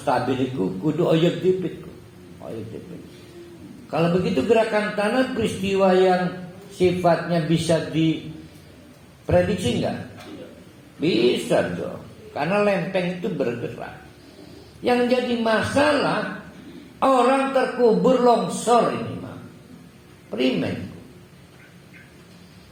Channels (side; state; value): both; identical; correlation 1.00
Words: stabil itu kudu oyek dipit. Kalau begitu gerakan tanah peristiwa yang sifatnya bisa diprediksi enggak? Bisa dong. Karena lempeng itu bergerak. Yang jadi masalah orang terkubur longsor ini mah. Primen.